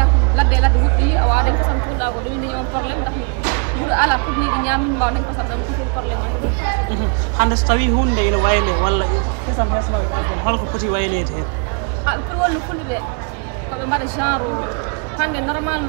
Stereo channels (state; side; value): quieter; left; 37.2 dB